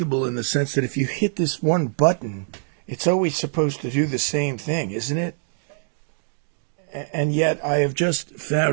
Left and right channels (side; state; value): left; silent; 63 dB below the other